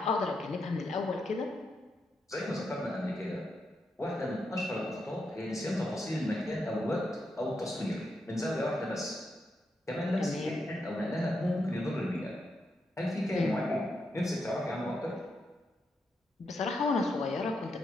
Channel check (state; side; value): normal; both; correlation 0.83